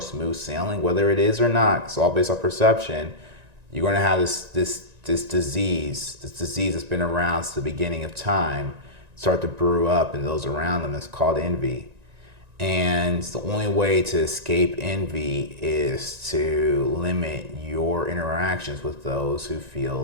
sailing, whether it is or not, it's all based on perception. You're going to have this disease that's been around since the beginning of time, start to brew up in those around them. It's called envy. And the only way to escape envy is to limit your interactions with those who feel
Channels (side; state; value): left; late; 1.9 ms